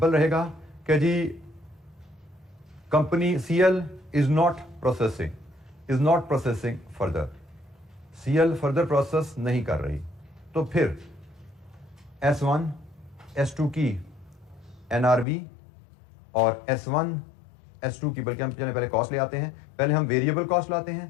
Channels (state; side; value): drops out; right; at 15.2 s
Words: रहेगा कि जी company CL is not processing further, CL further process नहीं कर रही। तो फिर S1 S2 की एनआरवी और S1 S2 की, बल्कि हम पहले कॉस्ट ले आते हैं, पहले हम वेरिएबल कॉस्ट लाते